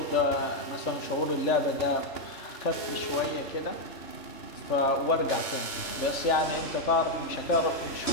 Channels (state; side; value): late; right; 2.9 ms